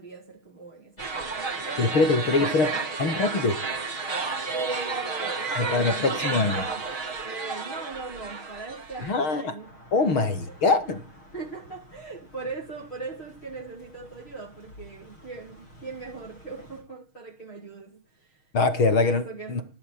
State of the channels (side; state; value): right; late; 6.4 ms